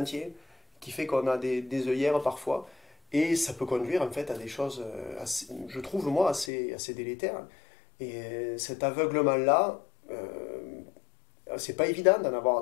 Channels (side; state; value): right; drops out; at 6.5 s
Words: qui fait qu'on a des œillères parfois. Et ça peut conduire en fait à des choses, je trouve moi, assez délétères. Et cet aveuglement-là, c'est pas évident